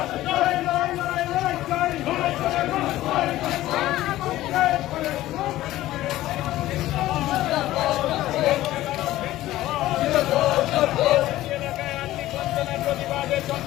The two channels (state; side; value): quieter; right; 15.4 dB